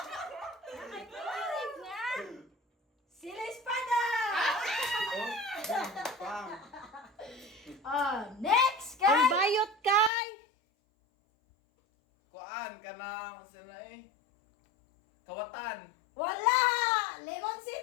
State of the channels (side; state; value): right; drops out; at 10.1 s